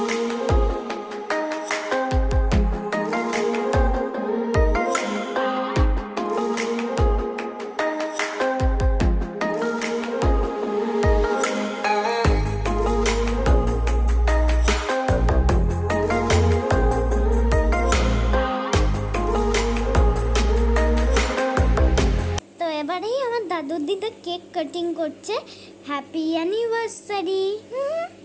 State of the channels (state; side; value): identical; both; correlation 1.00